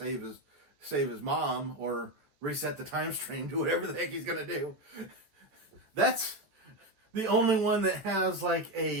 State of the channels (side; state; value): left; late; 13 ms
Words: his mom or reset the time stream, do whatever the heck he's gonna do. That's the only one that has like